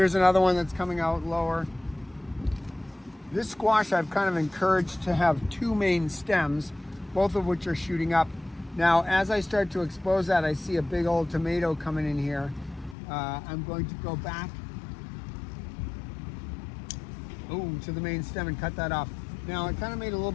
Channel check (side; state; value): right; drops out; at 13.0 s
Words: another one that's coming out lower. This squash I've kind of encouraged to have two main stems, both of which are shooting up. Now, as I start to expose that, I see a big old tomato coming in here. I'm going to go back to the main stem and cut that off. Now, I kind of made a little